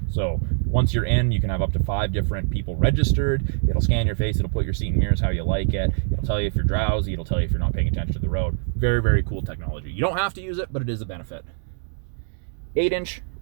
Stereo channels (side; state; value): left; silent; digital silence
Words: So once you're in, you can have up to 5 different people registered. It'll scan your face. It'll put your seat and mirrors how you like it. It'll tell you if you're drowsy. It'll tell you if you're not paying attention to the road. Very, very cool technology. You don't have to use it, but it is a benefit. 8-inch